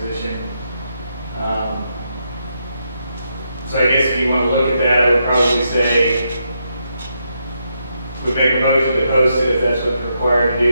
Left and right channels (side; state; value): both; inverted; correlation -0.81